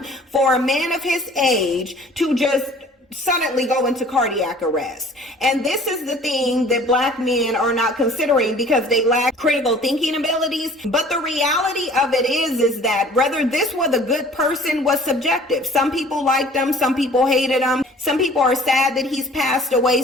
for a man of his age to just suddenly go into cardiac arrest. And this is the thing that black men are not considering because they lack critical thinking abilities. But the reality of it is that whether this was a good person was subjective. Some people liked him, some people hated him, some people are sad that he's passed away,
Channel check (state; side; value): normal; both; correlation 0.50